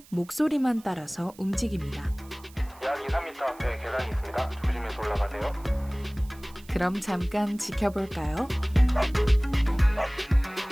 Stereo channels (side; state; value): right; noise; hiss, 24 dB below the sound